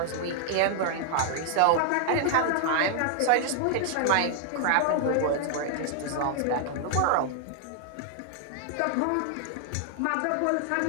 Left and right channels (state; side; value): different; both; correlation 0.00